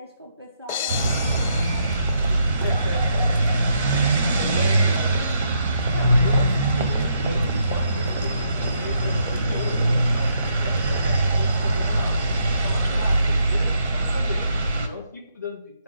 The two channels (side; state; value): both; inverted; correlation -0.77